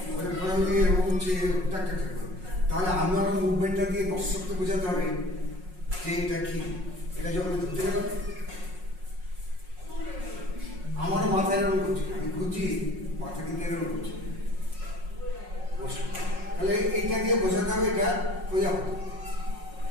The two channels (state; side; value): late; left; 5.5 ms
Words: প্রজাপতি এরকম উঠছে, টাক টাক টাক করে। তাহলে আমারও মুভমেন্টটা দিয়ে দর্শককে বোঝাতে হবে যে এটা কি। এটা যখন ধরতে গেলাম, আমারও মাথা এরকম করছি, আমি খুঁজছি, মাথা কিন্তু এরকম করছি। তাহলে এইটা দিয়ে বোঝাতে হবে এটা প্রজাপতি।